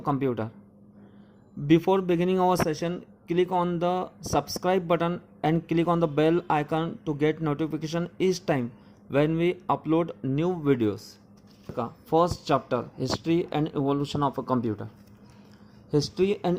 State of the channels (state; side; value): identical; both; correlation 1.00